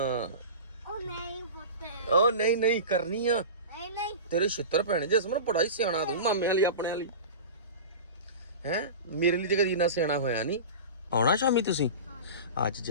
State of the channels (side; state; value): both; inverted; correlation -0.30